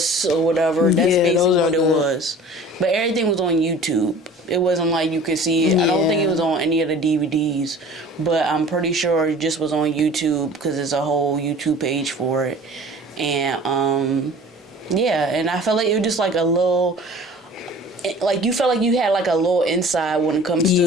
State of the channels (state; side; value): normal; both; correlation 0.44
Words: or whatever. That's basically what it was. But everything was on YouTube. It wasn't like you could see it. Yeah. I don't think it was on any of the DVDs, but I'm pretty sure it just was on YouTube because there's a whole YouTube page for it. And and I felt like it was just like a little. Like, you felt like you had, like, a little inside when it comes to